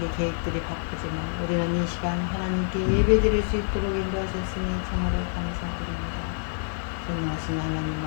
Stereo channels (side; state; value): right; silent; 60 dB below the other